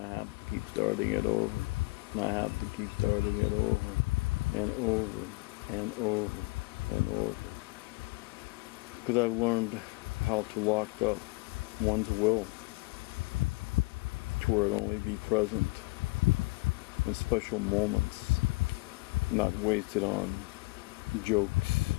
I have to keep starting it over. And I have to keep starting it over and over and over and over. Because I've learned how to lock up one's will to where it only be present in special moments, not wasted on jokes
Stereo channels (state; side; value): quieter; right; 25.0 dB